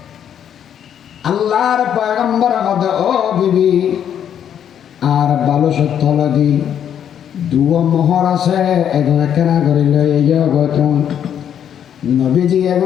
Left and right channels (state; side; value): quieter; right; 9.2 dB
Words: আল্লাহর পয়গম্বর হদে ও বিবি আর ভালো সত্য লাগি দুয়া মোহর আছে এখন কেনা করে লই ইয়ে গতন নবীজি